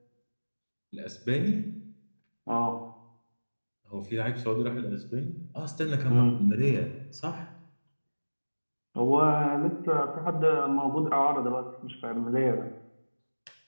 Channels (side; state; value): both; inverted; correlation -1.00